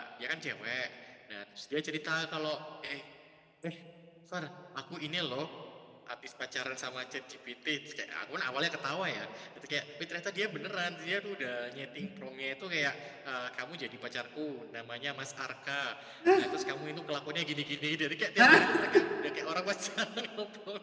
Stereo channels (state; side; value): identical; both; correlation 1.00